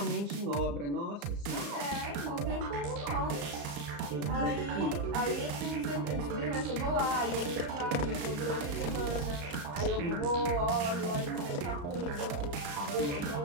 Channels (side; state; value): left; late; 35 ms